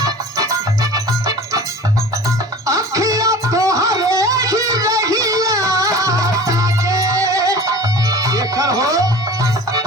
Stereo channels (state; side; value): normal; both; correlation 0.39